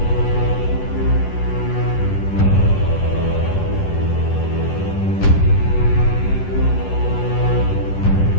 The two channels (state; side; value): late; right; 11 ms